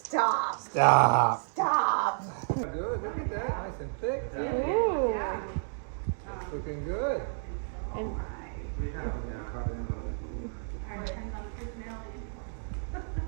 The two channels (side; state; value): left; silent; digital silence